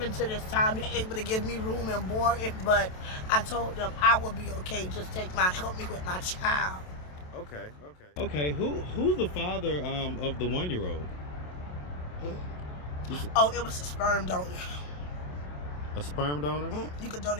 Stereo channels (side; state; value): right; late; 27 ms